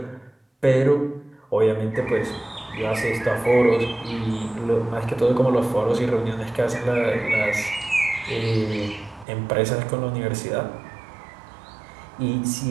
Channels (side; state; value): left; drops out; at 9.2 s